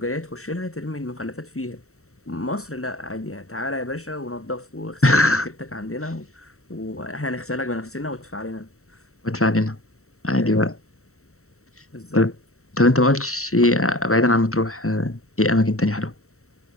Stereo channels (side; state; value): right; late; 0.64 ms